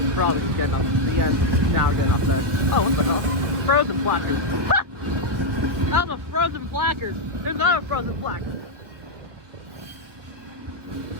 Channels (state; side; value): late; left; 1.4 ms